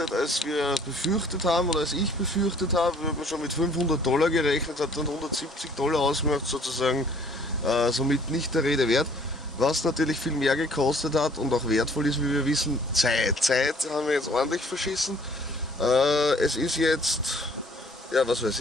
als wir befürchtet haben oder als ich befürchtet habe. Wir haben schon mit $500 gerechnet, hat dann $170 ausgemacht, sozusagen somit nicht der Rede wert. Was natürlich viel mehr gekostet hat und auch wertvoll ist, wie wir wissen, Zeit. Zeit haben wir jetzt ordentlich verschissen. Es ist jetzt, ja was weiß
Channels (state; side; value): normal; both; correlation 0.57